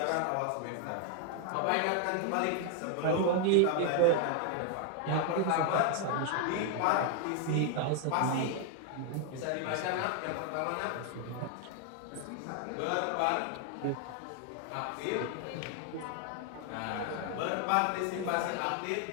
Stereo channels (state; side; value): different; both; correlation 0.00